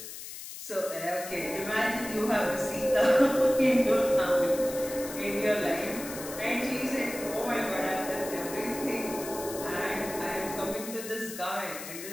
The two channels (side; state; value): left; noise; hiss, 11 dB below the sound